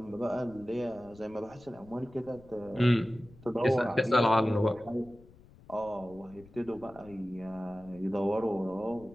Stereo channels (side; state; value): left; noise; rumble, 23 dB below the sound